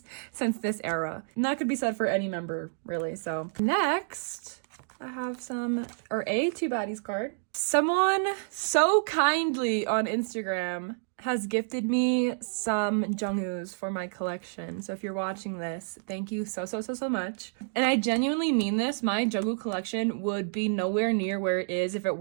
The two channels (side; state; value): left; silent; digital silence